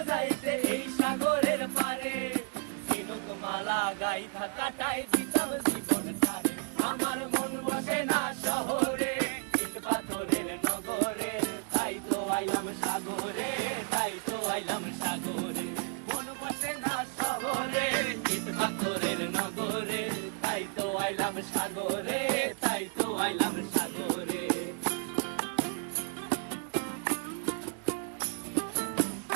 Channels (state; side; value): quieter; left; 39.6 dB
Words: যাইতে এই সাগরের পারে, ঝিনুক মালা গাইথা কাটাই দিতাম জীবনটারে। আমার মন বসে না শহরে, ইট পাথরের নগরে, তাই তো আইলাম সাগরে, তাই তো আইলাম সাগরে। মন বসে না শহরে, ইট পাথরের নগরে, তাই তো আইলাম সাগরে, তাই তো আইলাম সাগরে।